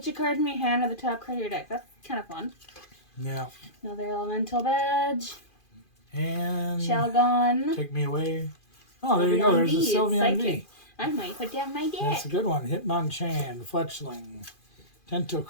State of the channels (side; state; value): right; late; 2.4 ms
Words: your card in your hand at the top card of your deck. That's kind of fun. Yeah. Another Elemental Badge. And Shelgon. take me away. Oh, there you go. There's a V, it's Sylveon V. psychic. I might put down my That's deck. a good one. Hitmonchan, Fletchling,